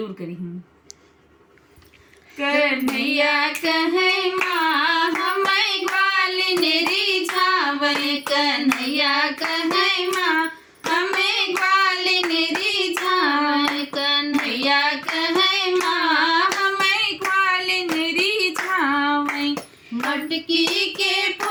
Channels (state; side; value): identical; both; correlation 1.00